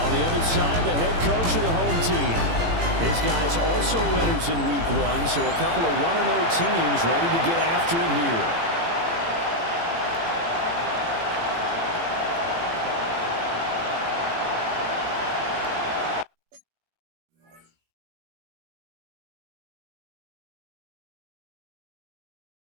the other side, the head coach of the home team. His guys also winners in week 1, so a couple of 1-0 teams ready to get after it here.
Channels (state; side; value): late; left; 18 ms